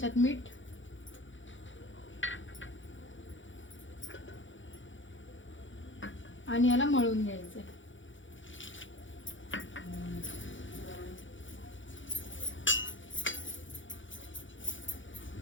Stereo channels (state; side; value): late; right; 0.56 ms